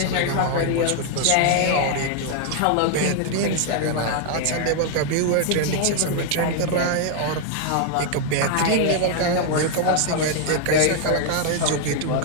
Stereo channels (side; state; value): both; different; correlation 0.00